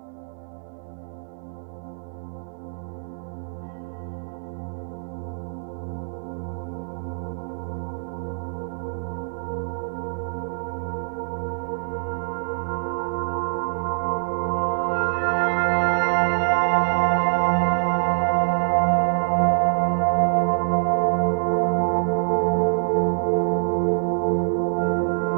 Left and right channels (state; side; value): silent; left; digital silence